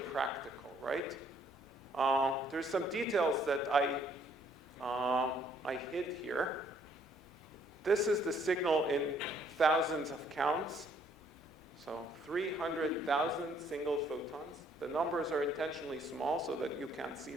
right? There's some details that I hid here. This is the signal in thousands of counts. So 300,000 single photons. The numbers are intentionally small so that you can't see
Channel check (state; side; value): noise; left; hum, 28 dB below the sound